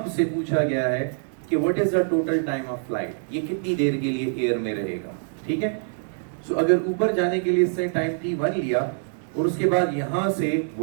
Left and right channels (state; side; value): silent; left; digital silence